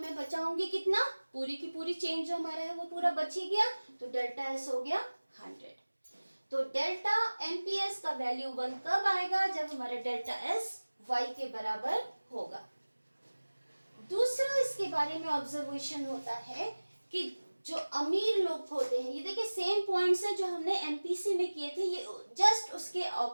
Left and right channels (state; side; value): inverted; both; correlation -1.00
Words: बचाऊंगी कितना? पूरी की पूरी चेंज जो हमारा है वो पूरा बच ही गया, तो डेल्टा एस हो गया 100। तो डेल्टा एमपीएस का वैल्यू 1 कब आएगा? जब हमारा डेल्टा एस वाई के बराबर होगा। दूसरा इसके बारे में ऑब्जर्वेशन होता है कि जो अमीर लोग होते हैं, ये देखिए सेम पॉइंट्स है जो हमने एमपीसी में किए थे, ये जस्ट उसके